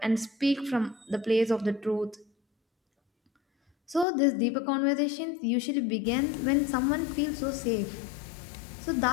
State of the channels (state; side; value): drops out; right; at 4.0 s